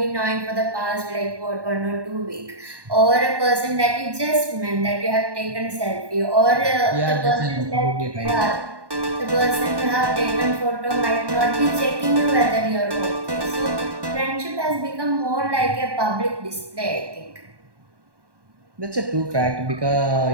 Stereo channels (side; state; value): left; late; 1.1 ms